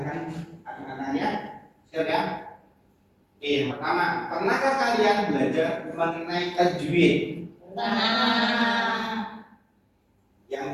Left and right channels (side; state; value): both; identical; correlation 1.00